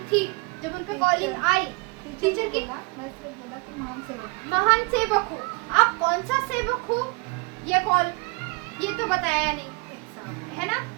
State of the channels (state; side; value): quieter; left; 28.4 dB